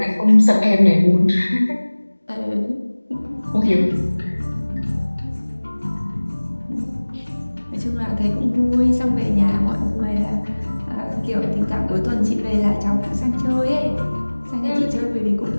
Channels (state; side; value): inverted; both; correlation -1.00